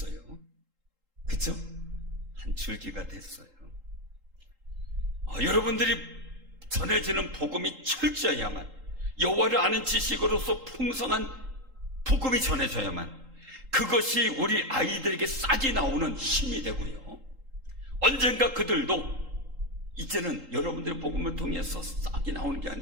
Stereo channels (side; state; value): left; late; 3.8 ms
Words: 그쵸? 한 줄기가 됐어요. 여러분들이 전해지는 복음이 철저해야만, 여호와를 아는 지식으로서 풍성한 복음이 전해져야만 그것이 우리 아이들에게 싹이 나오는 힘이 되고요, 언젠가 그들도 이제는 여러분들의 복음을 통해서 싹이 나오는 게